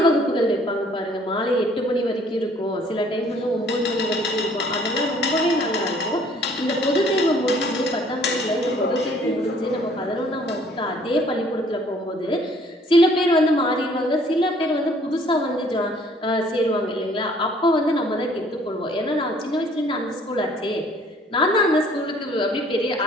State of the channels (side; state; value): both; normal; correlation 0.59